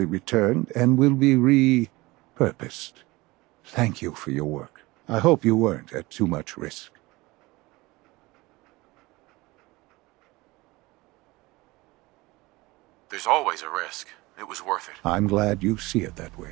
returned and will be repurposed. Thank you for your work. I hope you weren't at too much risk. There's always a risk. It was worth it. I'm glad you see it that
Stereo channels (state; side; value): quieter; left; 21.6 dB